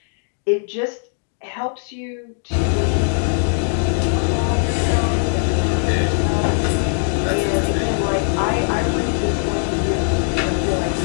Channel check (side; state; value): right; silent; digital silence